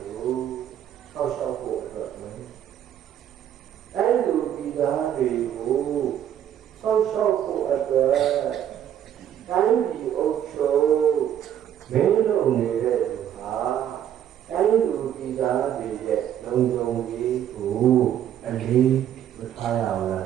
ကိုစောင့်ရှောက်ဖို့တော့မယ်အဲ့လိုဒီသားတွေကိုစောင့်ရှောက်ဖို့အတွက်တိုင်းပြည်အုပ်ချုပ်မင်းတို့နေတဲ့လူဟာတိုင်းလူပြည်သားတွေရဲ့လုံခြုံရေးကိုအလေးမထားရဘူးလား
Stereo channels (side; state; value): left; quieter; 10.3 dB